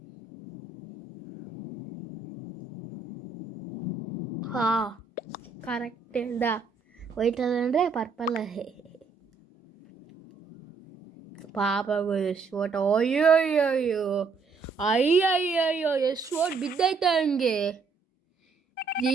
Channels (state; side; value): quieter; left; 4.8 dB